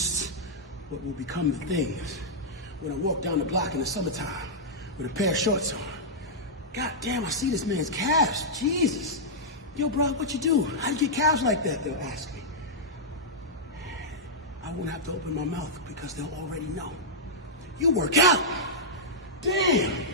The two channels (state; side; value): normal; both; correlation -0.09